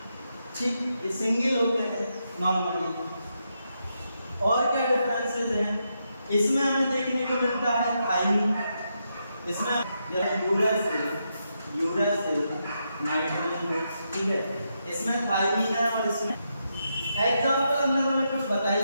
ठीक, ये सिंगल होते हैं नॉर्मली। और क्या डिफरेंसेस हैं, इसमें हमें देखने को मिलता है थाइमिन, इसमें यूरासिल नाइट्रोजन फिक्स। ठीक है, इसमें थाइमिन है और इसमें एग्जांपल हमने हमें कुछ बताई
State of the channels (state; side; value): inverted; both; correlation -0.83